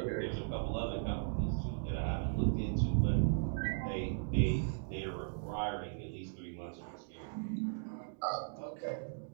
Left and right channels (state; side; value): silent; left; digital silence